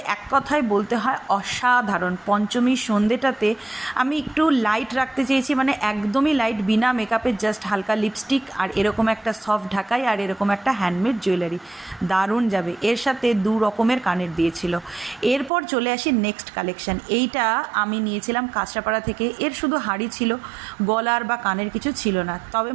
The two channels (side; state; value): left; drops out; at 15.5 s